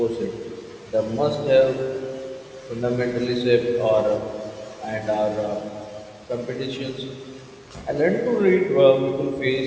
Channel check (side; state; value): both; identical; correlation 1.00